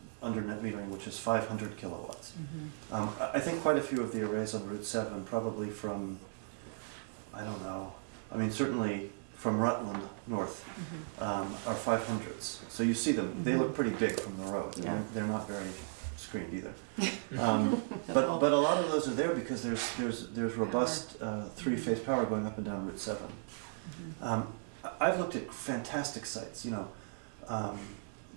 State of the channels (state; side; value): silent; left; digital silence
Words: under net metering, which is 500 kilowatts. I think quite a few of the arrays on Route 7, probably from, I don't know, certainly from Rutland north, are 500s. So you see them, they look pretty big from the road. Yeah. They're not very screened either. But a lot of those are there because there's robust 3-phase power going up and down Route 7. I've looked at fantastic sites,